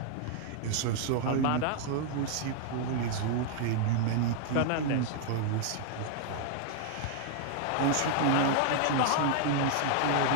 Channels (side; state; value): both; different; correlation 0.00